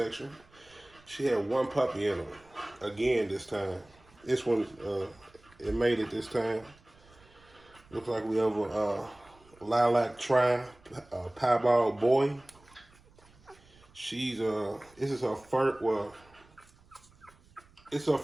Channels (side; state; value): right; noise; rumble, 28 dB below the sound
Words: She had one puppy in her. Again this time. This one, it made it this time. Looks like we have a lilac piebald boy. This is her first, it's her